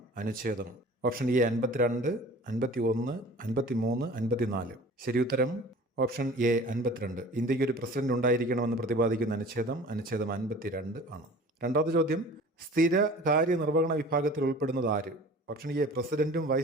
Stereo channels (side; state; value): both; normal; correlation 0.43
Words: അനുച്ഛേദം. Option A 52, 51, 53, 54. ശരിയുത്തരം ഓപ്ഷൻ എ 52. ഇന്ത്യക്ക് ഒരു പ്രസിഡന്റ് ഉണ്ടായിരിക്കണമെന്ന് പ്രതിപാദിക്കുന്ന അനുച്ഛേദം 52 ആണ്. രണ്ടാമത്തെ ചോദ്യം: സ്ഥിര കാര്യനിർവഹണ വിഭാഗത്തിൽ ഉൾപ്പെടുന്നത് ആര്? ഓപ്ഷൻ എ പ്രസിഡന്റും